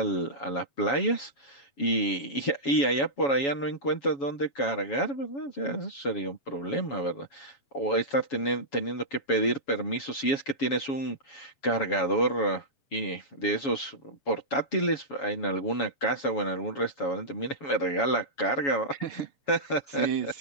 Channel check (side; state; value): right; late; 7.2 ms